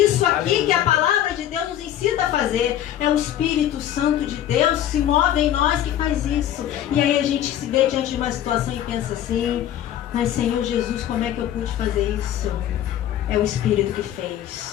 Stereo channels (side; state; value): right; quieter; 11.4 dB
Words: aqui, Aleluia. que a palavra de Deus nos ensina a fazer. É o Espírito Santo de Deus que se move em nós que faz isso. E aí a gente se vê diante de uma situação e pensa assim: mas Senhor Jesus, como é que eu pude fazer isso? É o Espírito que